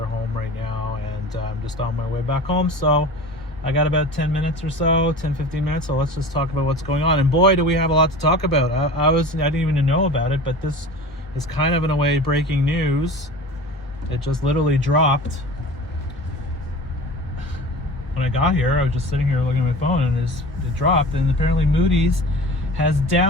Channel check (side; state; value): both; normal; correlation 0.37